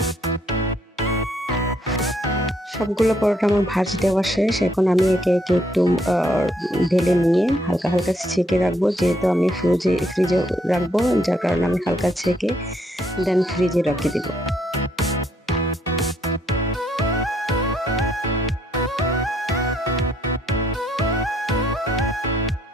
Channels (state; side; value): normal; both; correlation 0.71